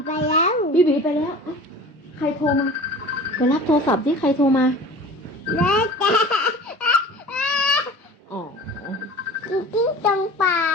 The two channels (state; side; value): normal; both; correlation 0.40